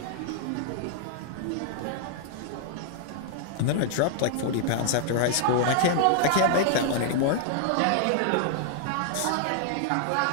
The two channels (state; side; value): different; both; correlation -0.01